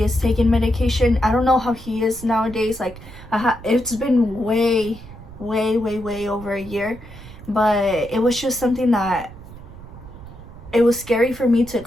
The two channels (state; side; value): noise; right; rumble, 16 dB below the sound